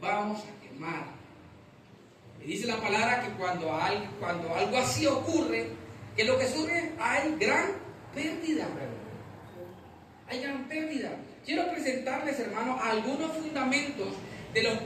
a quemar. Y dice la palabra que cuando algo así ocurre, ¿qué es lo que surge? Hay gran pérdida. Hay gran pérdida. Quiero presentarles, hermano, algunos fundamentos de los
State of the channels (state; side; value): identical; both; correlation 1.00